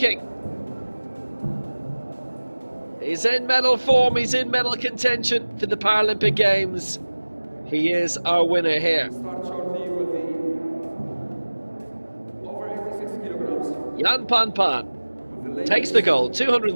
He's in medal form, he's in medal contention for the Paralympic Games. He is our winner here. Jan Pan Pan takes the gold,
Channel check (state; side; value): inverted; both; correlation -1.00